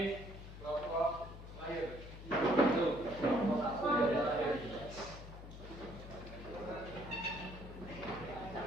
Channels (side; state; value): left; noise; hum, 12 dB below the sound